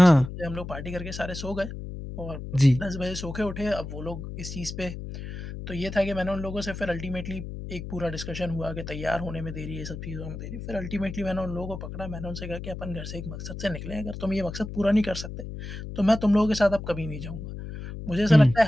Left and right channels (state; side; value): noise; left; hum, 9 dB below the sound